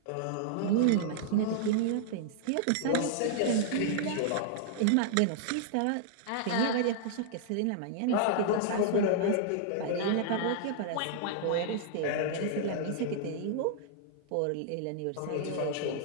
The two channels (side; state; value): both; different; correlation -0.01